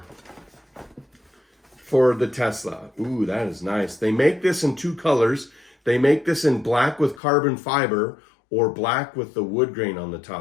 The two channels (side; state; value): right; drops out; at 7.2 s